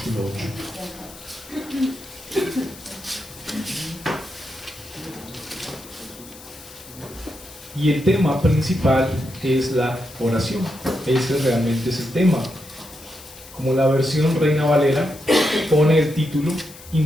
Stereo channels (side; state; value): left; noise; hiss, 18 dB below the sound